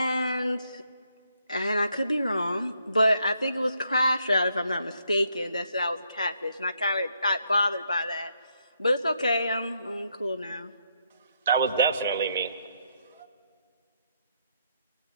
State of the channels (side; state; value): both; inverted; correlation -0.76